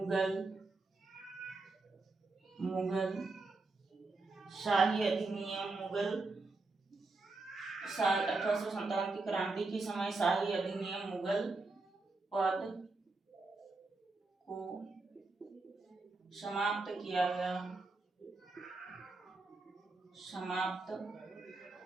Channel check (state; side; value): quieter; left; 3.5 dB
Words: शाही अधिनियम, 1857 की क्रांति के समय शाही अधिनियम मुगल पद को समाप्त किया गया,